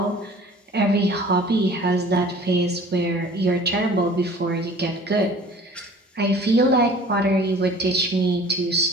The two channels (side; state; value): both; normal; correlation 0.47